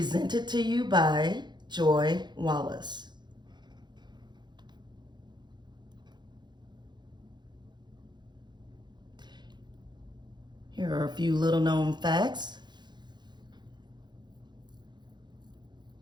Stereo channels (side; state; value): left; late; 0.21 ms